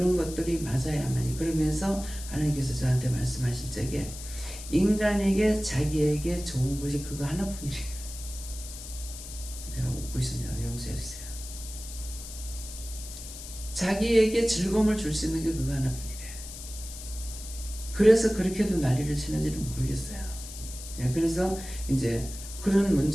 것들이 맞아야만이. 그러면서 하나님께서 저한테 말씀하실 적에 인간에게 자기에게 좋은 것이 그거 하나뿐이래요. 내가 웃고 있으냐 용서해 주세요. 자기에게 즐거움을 줄 수 있는 게 그거 하나뿐이래. 그래서 그렇게도 난리를 치는지는 모르겠어요. 그래서 이제 그런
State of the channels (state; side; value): noise; left; hiss, 12 dB below the sound